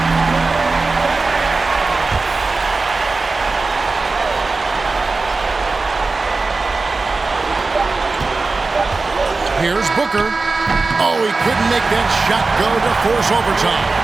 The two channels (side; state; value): left; quieter; 3.8 dB